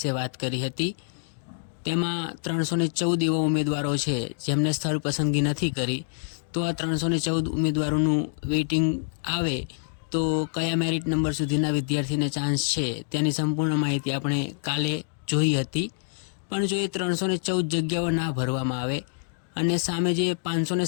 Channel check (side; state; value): right; silent; digital silence